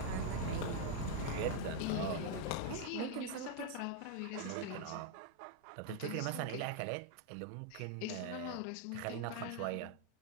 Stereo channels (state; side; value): different; both; correlation 0.00